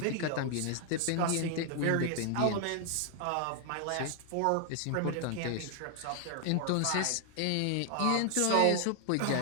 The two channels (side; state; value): both; different; correlation 0.00